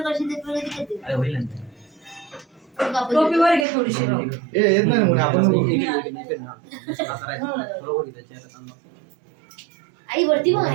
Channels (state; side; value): drops out; left; at 3.7 s